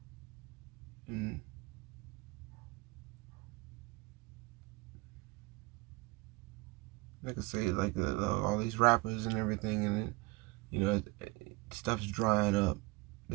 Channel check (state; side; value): quieter; left; 23.5 dB